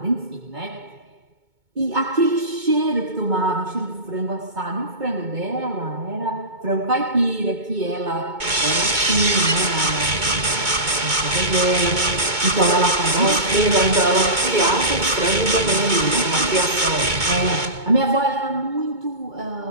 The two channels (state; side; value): late; left; 2.2 ms